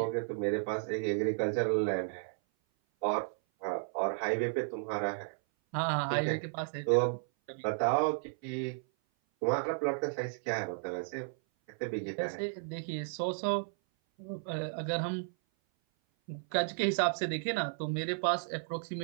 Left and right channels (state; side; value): silent; left; 55 dB below the other